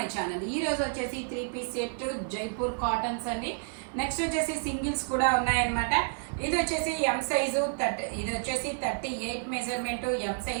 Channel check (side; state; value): left; silent; 58 dB below the other